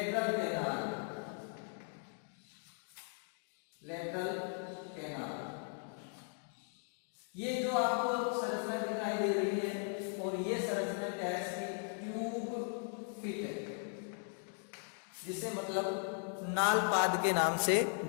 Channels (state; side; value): silent; right; 52 dB below the other